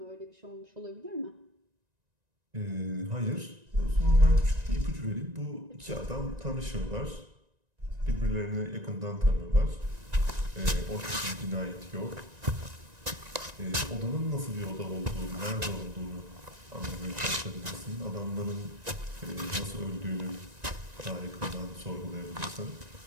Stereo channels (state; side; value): late; left; 1.9 ms